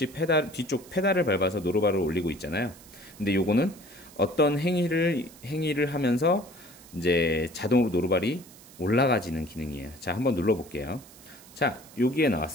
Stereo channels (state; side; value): noise; right; hiss, 21 dB below the sound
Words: 페달을 밟아서 노루발을 올리고 있잖아요. 근데 요거는 어떤 행위를 하면서 이제 자동으로 노루발이 올라가지는 기능이에요. 자, 한번 눌러볼게요. 자, 여기에